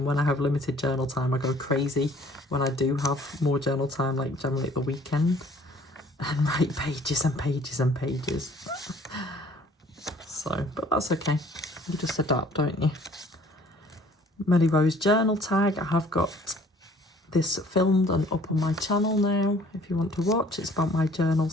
when I have limited journal time, I go crazy. When I do have more journal time, like generally at the weekend, and write pages and pages and pages. So, but that's okay. You just adapt, don't you? Melly Rose journal tag. I have got this filmed and up on my channel now, if you want to watch. It's about my journal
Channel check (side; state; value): both; normal; correlation 0.55